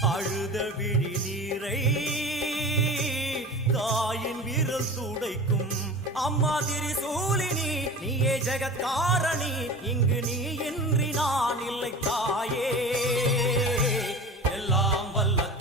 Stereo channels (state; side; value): normal; both; correlation 0.35